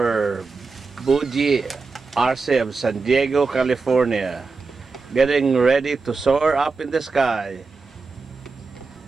Buji Arce of San Diego, California. Getting ready to soar up in the sky.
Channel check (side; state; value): left; quieter; 4.3 dB